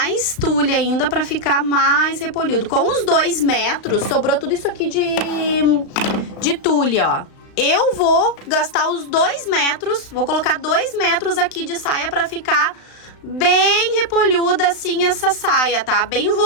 tule ainda pra ficar mais repolhudo. Com os 2 metros, sobrou tudo isso aqui de tule, ó. Eu vou gastar os 2 metros, vou colocar 2 metros aqui de saia pra ficar bem repolhuda assim essa saia, tá? Bem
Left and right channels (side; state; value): right; late; 35 ms